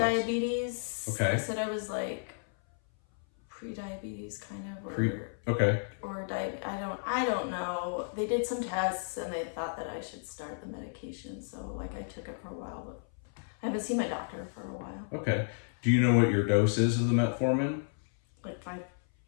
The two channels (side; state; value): right; silent; 56 dB below the other